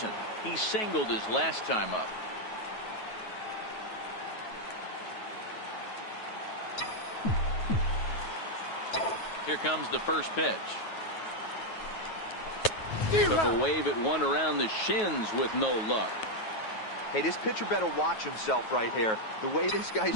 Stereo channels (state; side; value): late; right; 9.3 ms